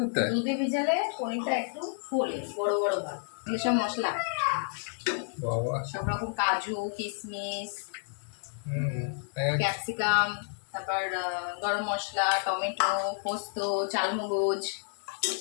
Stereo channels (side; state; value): right; silent; digital silence